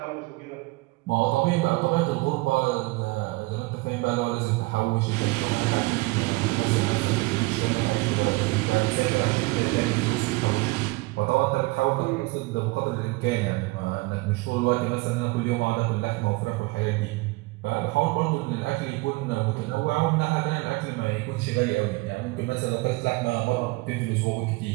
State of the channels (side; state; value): left; quieter; 23.2 dB